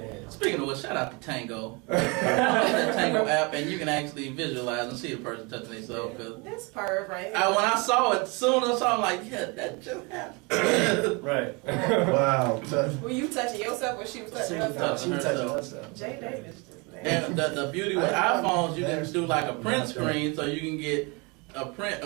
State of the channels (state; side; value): quieter; left; 29.1 dB